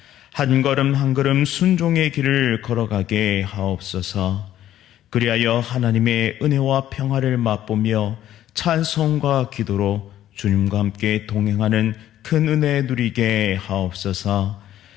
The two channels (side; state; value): right; quieter; 12.3 dB